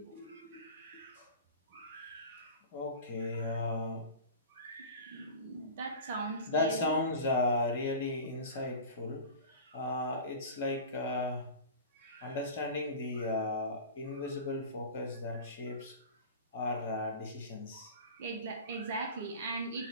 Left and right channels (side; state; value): both; inverted; correlation -0.34